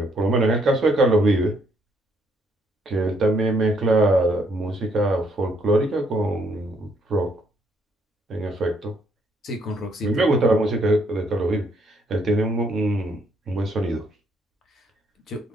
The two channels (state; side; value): normal; both; correlation 0.70